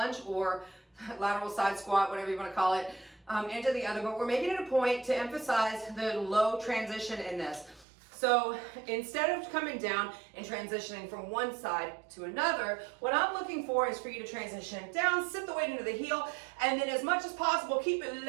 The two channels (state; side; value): drops out; left; at 7.9 s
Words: or lateral side squat, whatever you want to call it, into the other, but we're making it a point to emphasize the low transition in this. So instead of coming down and transitioning from one side to another, what I'm looking for is for you to transition down, sit the weight into the heel, and then as much as possible, keep it